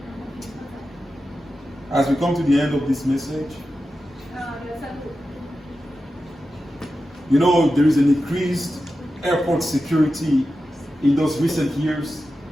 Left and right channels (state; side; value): normal; both; correlation 0.91